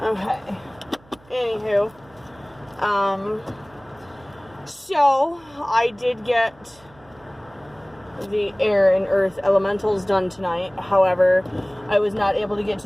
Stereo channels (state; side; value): noise; right; hum, 27 dB below the sound